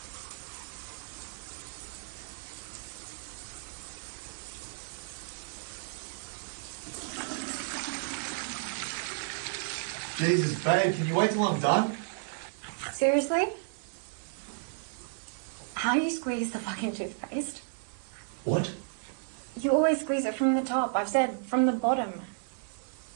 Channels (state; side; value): silent; left; digital silence